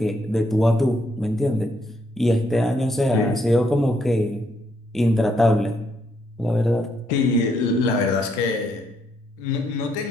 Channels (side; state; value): both; normal; correlation 0.74